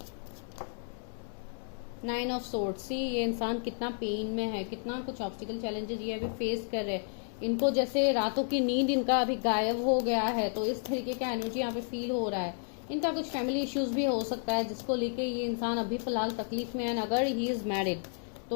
नाइन ऑफ सोर्ड्स, सी ये इंसान कितना पेन में है, कितना कुछ ऑब्स्टिकल चैलेंजेस ये अभी फेस कर रहे हैं। इनको जैसे रातों की नींद इनका अभी गायब हो गया है, तो इस तरीके का एनर्जी यहाँ पे फील हो रहा है। इनका कुछ फैमिली इश्यूज भी हो सकता है, जिसको लेके ये इंसान अभी फिलहाल तकलीफ में है। अगर ही इज मैरिड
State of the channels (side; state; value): right; silent; 57 dB below the other